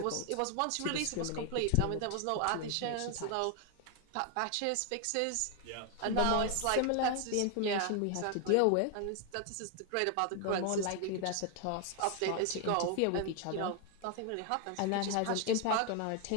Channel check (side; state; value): both; different; correlation 0.01